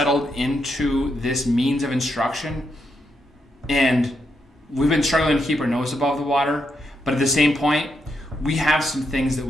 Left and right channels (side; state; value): both; normal; correlation 0.81